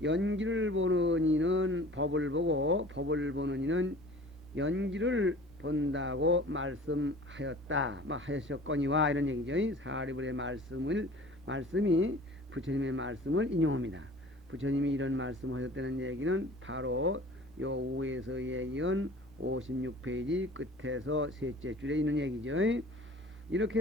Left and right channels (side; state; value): both; normal; correlation 0.45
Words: 연기를 보는 이는 법을 보고 법을 보는 이는 연기를 본다고 말씀하였다. 하셨거니와 이런 얘기죠. 사리불의 말씀이 부처님의 말씀을 인용합니다. 부처님이 이런 말씀하셨다는 얘기는 바로 요 우에서 얘기한 56페이지 끝에서 셋째 줄에 있는 얘기죠.